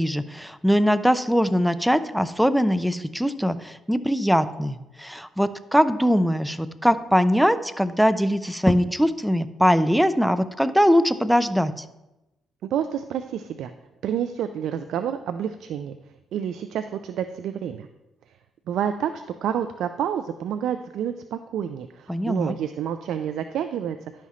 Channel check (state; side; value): normal; both; correlation 0.92